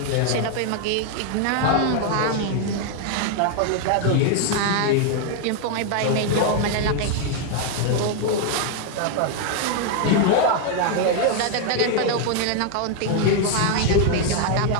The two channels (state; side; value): different; both; correlation 0.00